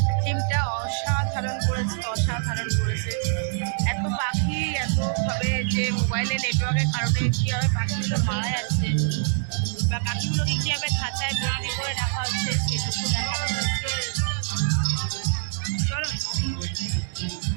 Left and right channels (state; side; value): silent; left; digital silence